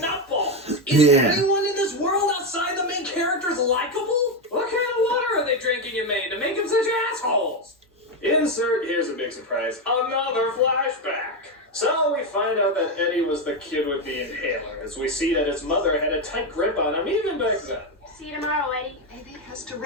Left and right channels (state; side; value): normal; both; correlation 0.09